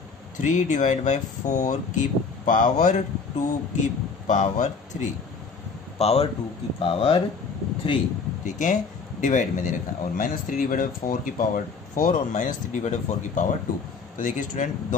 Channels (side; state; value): right; quieter; 5.0 dB